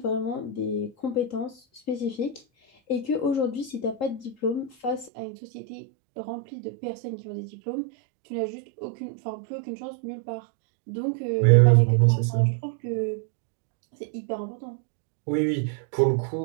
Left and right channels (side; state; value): left; drops out; at 5.1 s